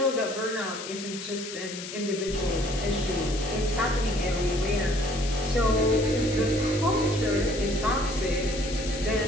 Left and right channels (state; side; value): noise; left; hiss, 10 dB below the sound